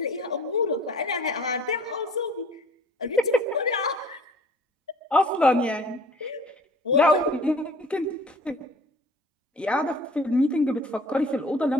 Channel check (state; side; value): normal; both; correlation 0.50